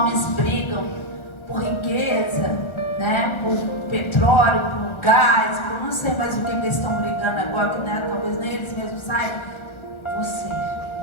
brigam por riqueza, né, por petróleo, por gás, por não sei mais o que eles estão brigando agora, que, né, talvez nem eles mesmos saibam. Você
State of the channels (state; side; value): late; right; 1.3 ms